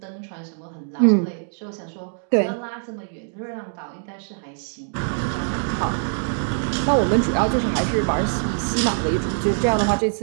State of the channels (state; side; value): silent; left; digital silence